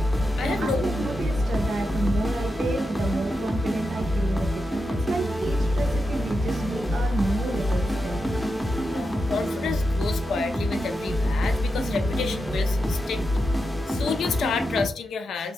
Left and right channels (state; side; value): normal; both; correlation 0.87